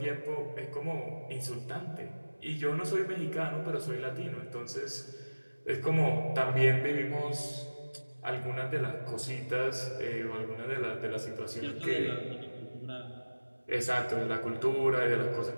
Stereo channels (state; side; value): inverted; both; correlation -1.00